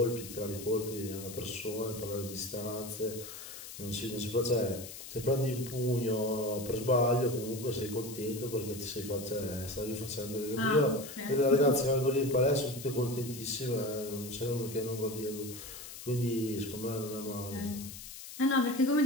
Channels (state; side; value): noise; left; hiss, 12 dB below the sound